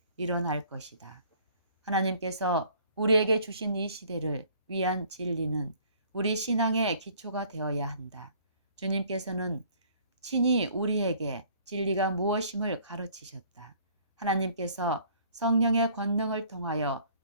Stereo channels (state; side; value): inverted; both; correlation -0.56